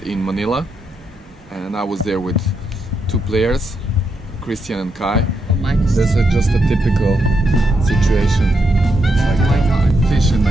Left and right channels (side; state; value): both; normal; correlation 0.81